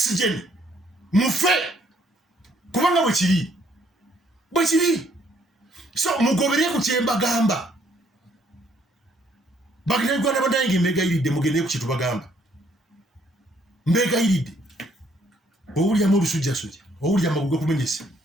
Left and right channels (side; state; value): both; normal; correlation 0.66